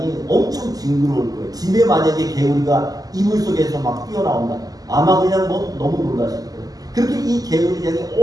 엄청 징그러울 거예요. 집에 만약에 개구리가 이불 속에서 막 뛰어나온다. 아마 그냥 뭐 너무 놀라실 거예요. 그렇게 이 개구리 재앙이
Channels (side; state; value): left; late; 0.18 ms